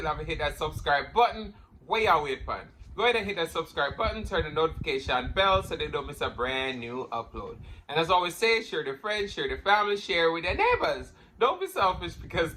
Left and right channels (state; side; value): identical; both; correlation 1.00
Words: haven't hit that subscribe button, where you wait for? Go ahead and hit that subscribe button, turn the notification bell so they don't miss a brand new upload. And as I always say, share with friends, share with family, share with their neighbors. Don't be selfish because